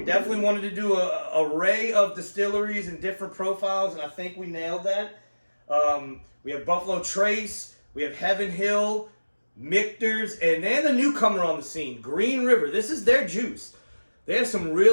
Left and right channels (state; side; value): inverted; both; correlation -1.00